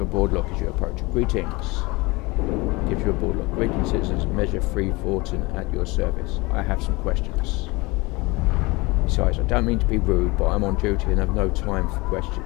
a board lock as you approach. Greetings. Gives you a board lock. Greetings, citizens. Measure 3 Vorten at your service. I have some questions. Besides, I don't mean to be rude, but I'm on duty and have no time for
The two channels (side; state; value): right; quieter; 24.1 dB